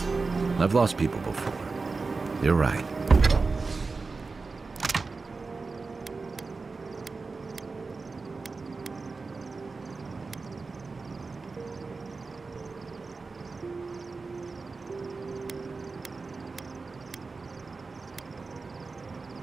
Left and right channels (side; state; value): left; quieter; 4.1 dB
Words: I've lost people before. You're right.